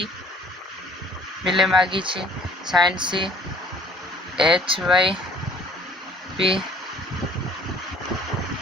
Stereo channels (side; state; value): both; normal; correlation 0.54